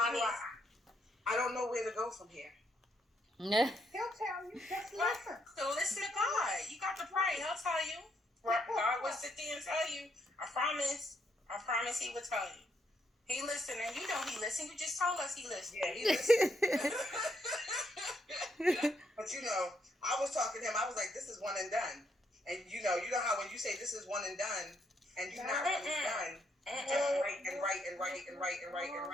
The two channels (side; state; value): both; normal; correlation 0.75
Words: do I don't know where to go from here. He'll tell you. Just listen. So listen to God. You got to pray. He'll tell you. God will sit there and tell you. I promise he will tell you. He listened, and you know he listened. You just told us he listened. Yeah, he listened. But you know, I was talking to him. I was like, "This is one and done." And you know how when you say this is one and done, and you're not really done, you just write and write and write and write and write and